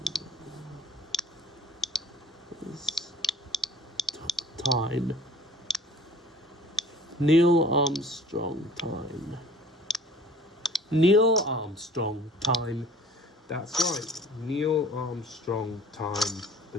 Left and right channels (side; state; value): both; normal; correlation 0.50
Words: Time. Neil Armstrong time. Neil Armstrong time. That's right. Neil Armstrong time.